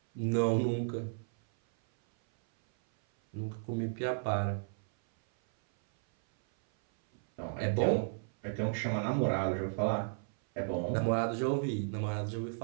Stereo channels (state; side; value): silent; left; 55 dB below the other